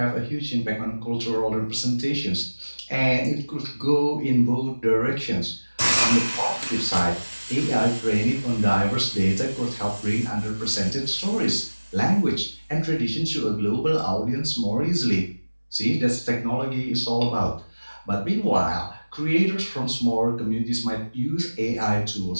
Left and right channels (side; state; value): both; inverted; correlation -1.00